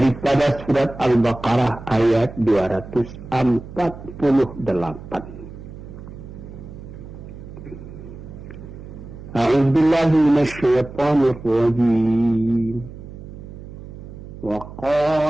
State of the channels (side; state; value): right; noise; hum, 14 dB below the sound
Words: surat Al-Baqarah ayat 248. أعوذ بالله من الشيطان الرجيم